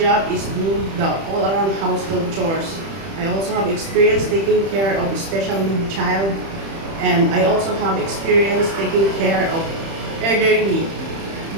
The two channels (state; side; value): late; left; 31 ms